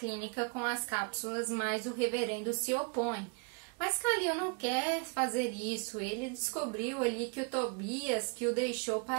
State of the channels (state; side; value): quieter; left; 33.9 dB